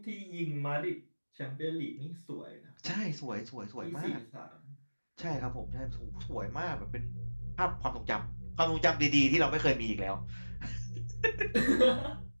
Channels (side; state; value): both; inverted; correlation -1.00